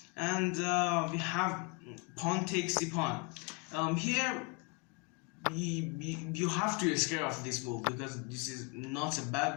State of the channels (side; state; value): right; quieter; 29.7 dB